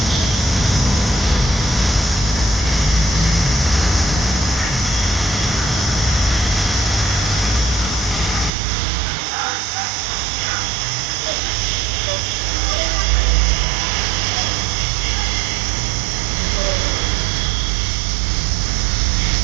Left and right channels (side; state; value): left; drops out; at 8.5 s